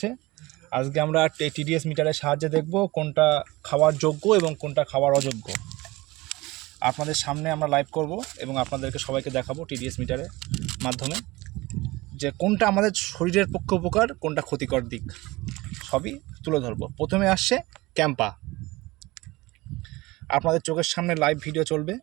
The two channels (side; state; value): left; quieter; 21.1 dB